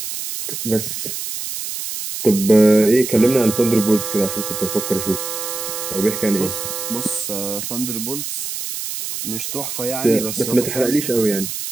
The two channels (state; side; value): noise; right; hiss, 6 dB below the sound